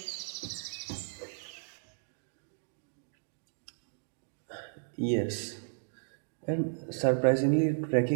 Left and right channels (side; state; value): left; silent; digital silence